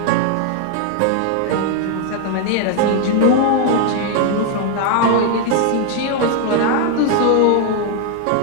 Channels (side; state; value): both; different; correlation 0.00